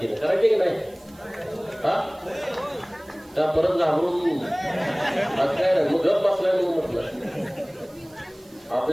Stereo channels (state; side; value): noise; right; hiss, 28 dB below the sound